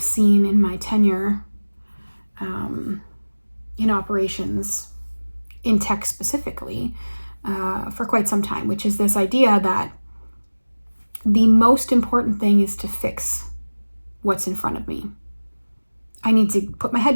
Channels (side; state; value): both; inverted; correlation -1.00